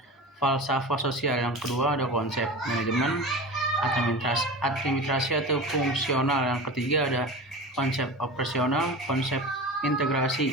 falsafah sosial. Yang kedua ada konsep manajemen administrasi atau fungsional. Yang ketiga ada konsep operasional, konsep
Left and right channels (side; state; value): both; normal; correlation 0.31